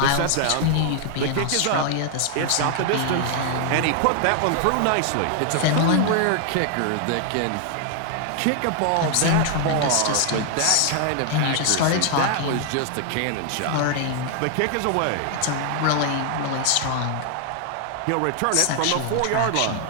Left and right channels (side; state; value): both; different; correlation 0.00